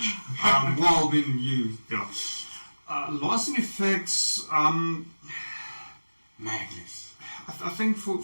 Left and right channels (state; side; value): inverted; both; correlation -1.00